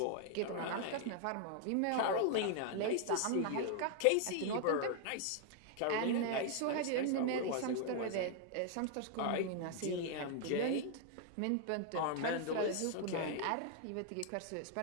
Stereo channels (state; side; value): different; both; correlation 0.00